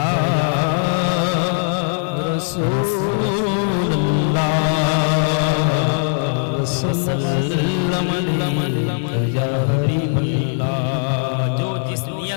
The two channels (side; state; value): right; silent; digital silence